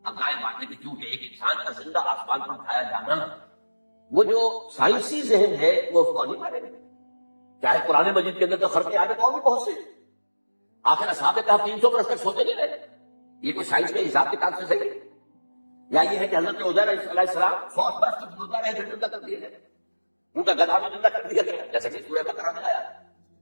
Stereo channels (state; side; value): inverted; both; correlation -1.00